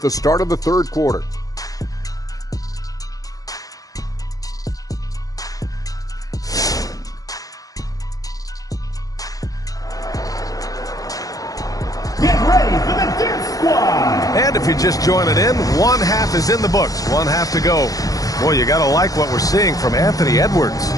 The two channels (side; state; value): right; late; 0.17 ms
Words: the start of the third quarter. ready for the dance squad. And if you're just joining in, one half is in the books. One half to go. Boy, you got to like what we're seeing from Anthony Edwards.